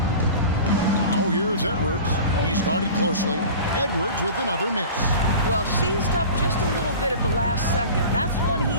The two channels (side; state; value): both; inverted; correlation -0.37